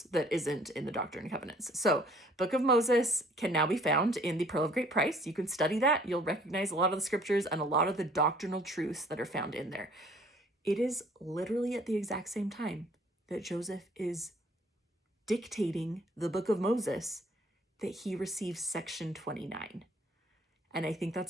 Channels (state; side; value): normal; both; correlation 0.57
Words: that isn't in the Doctrine and Covenants. So Book of Moses can now be found in the Pearl of Great Price. You can study that. You'll recognize a lot of the scriptures and a lot of the doctrinal truths that are found in there. It is literally at the exact same time that Joseph is dictating the Book of Moses that he receives section 29. And I think